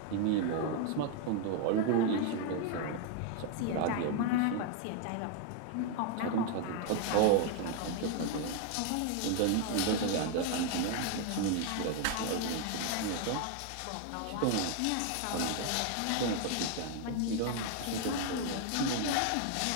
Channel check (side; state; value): both; different; correlation 0.01